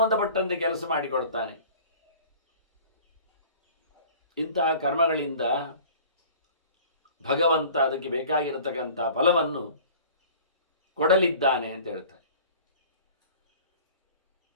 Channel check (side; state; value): both; inverted; correlation -0.45